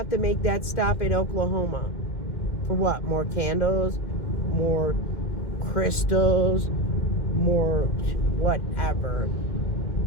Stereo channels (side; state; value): right; late; 2.1 ms